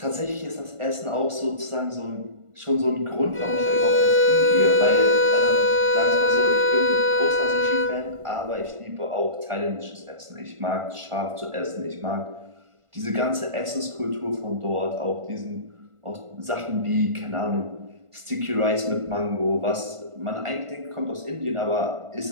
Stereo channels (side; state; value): left; late; 1.4 ms